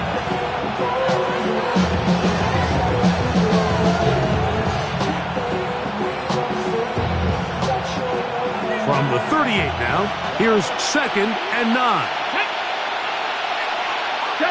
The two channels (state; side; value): identical; both; correlation 1.00